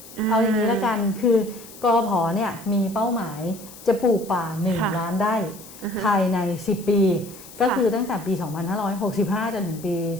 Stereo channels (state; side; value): noise; left; hiss, 18 dB below the sound